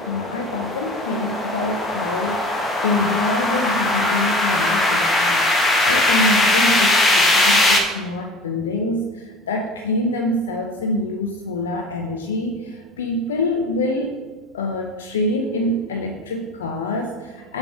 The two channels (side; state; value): both; normal; correlation 0.37